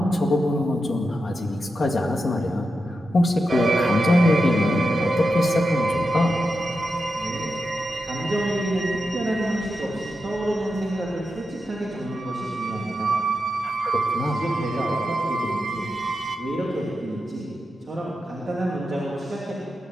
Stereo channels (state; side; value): normal; both; correlation 0.88